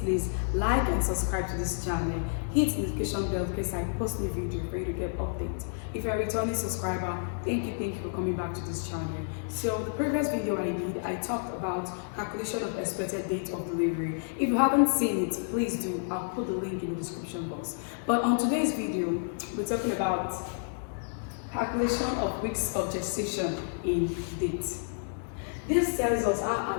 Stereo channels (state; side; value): silent; right; digital silence